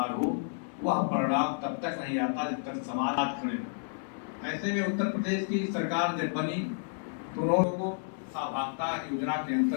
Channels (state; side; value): silent; right; 57 dB below the other